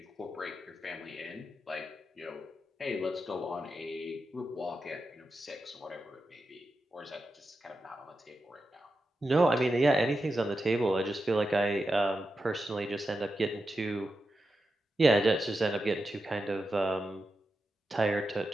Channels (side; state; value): both; normal; correlation 0.89